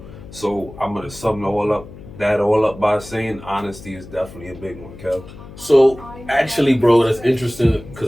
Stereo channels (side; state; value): left; noise; hum, 16 dB below the sound